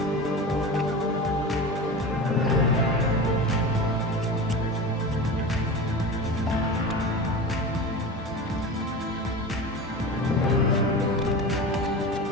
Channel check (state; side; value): normal; both; correlation 0.30